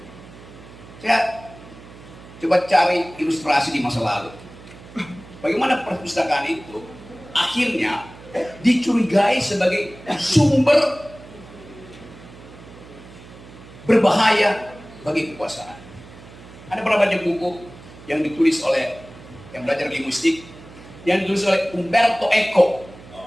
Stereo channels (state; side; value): noise; right; hum, 19 dB below the sound